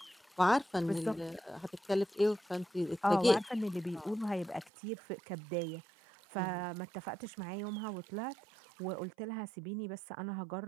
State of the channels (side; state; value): left; drops out; at 4.7 s